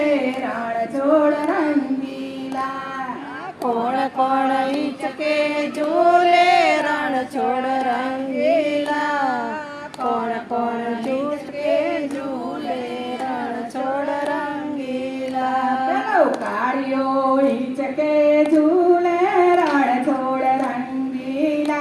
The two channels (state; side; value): identical; both; correlation 1.00